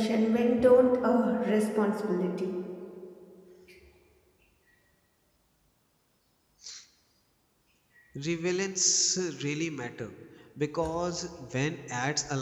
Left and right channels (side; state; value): both; identical; correlation 1.00